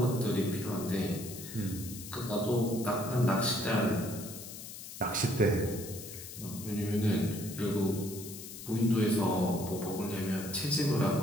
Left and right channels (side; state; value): left; noise; hiss, 12 dB below the sound